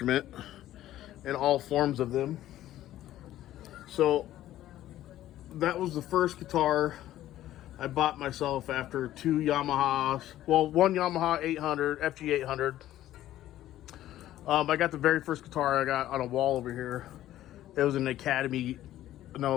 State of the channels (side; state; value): right; quieter; 13.5 dB